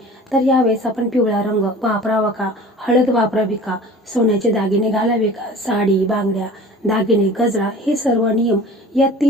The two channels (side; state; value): both; normal; correlation 0.42